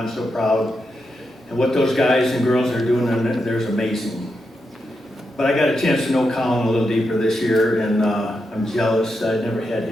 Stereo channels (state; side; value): normal; both; correlation 0.85